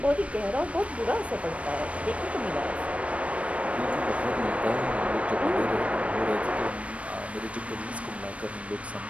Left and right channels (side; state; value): left; late; 0.064 ms